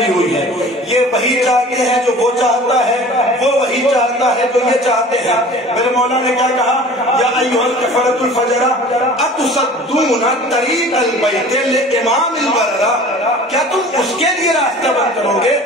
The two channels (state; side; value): normal; both; correlation 0.44